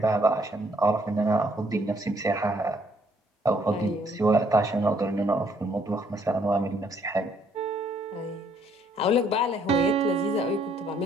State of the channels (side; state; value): both; normal; correlation 0.67